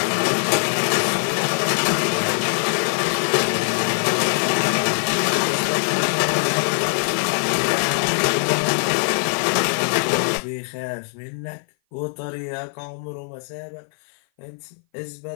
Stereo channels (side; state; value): right; silent; 58 dB below the other